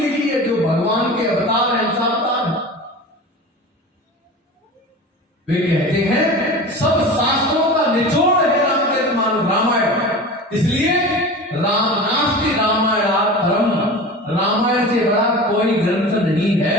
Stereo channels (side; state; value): both; normal; correlation 0.33